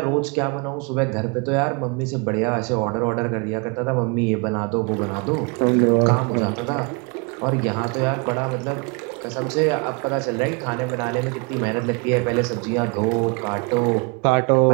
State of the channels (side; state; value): left; quieter; 32.5 dB